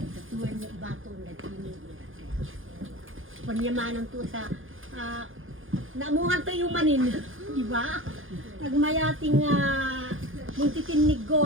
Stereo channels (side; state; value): left; late; 0.59 ms